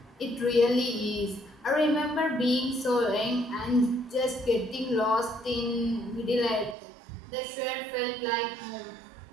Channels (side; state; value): left; drops out; at 6.8 s